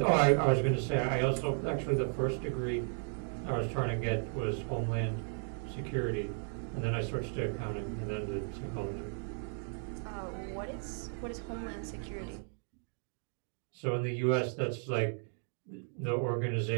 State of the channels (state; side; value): silent; left; 55 dB below the other